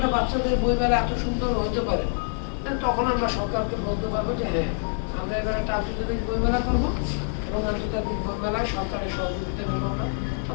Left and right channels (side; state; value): right; silent; 60 dB below the other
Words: বাচ্চাদের বইমেলা এত সুন্দর হতে পারে, তখন আমরা সরকারকে বলতে পারবো যে হ্যাঁ, আমরা এবার একটা আন্তর্জাতিক বইমেলা করবো, এবং আন্তর্জাতিক বইমেলায় সরকারের সহযোগিতা নেব আমরা,